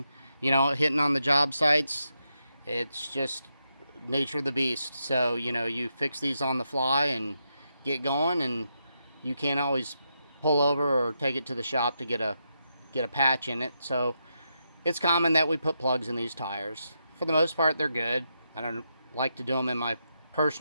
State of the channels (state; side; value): inverted; both; correlation -0.84